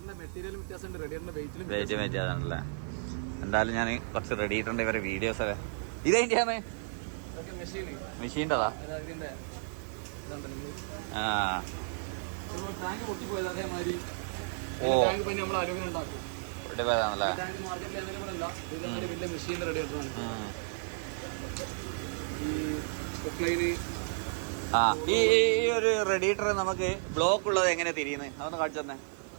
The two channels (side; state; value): left; silent; digital silence